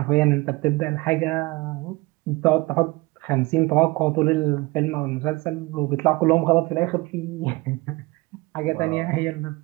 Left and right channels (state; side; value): quieter; left; 22.9 dB